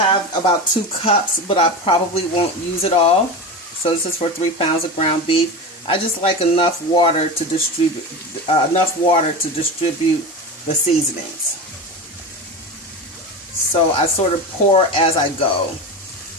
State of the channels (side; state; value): both; normal; correlation 0.24